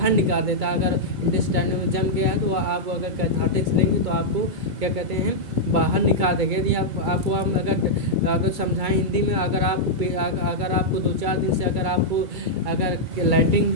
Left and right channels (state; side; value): late; left; 2.2 ms